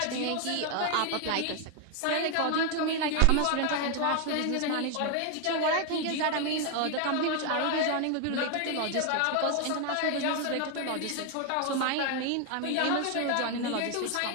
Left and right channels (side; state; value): both; different; correlation 0.01